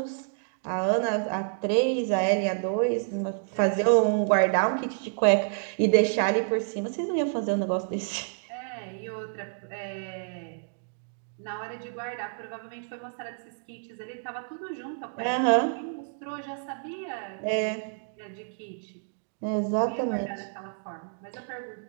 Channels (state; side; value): silent; left; digital silence